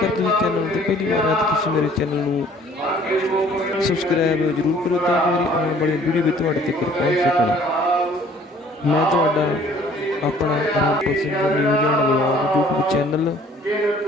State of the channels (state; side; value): normal; both; correlation 0.55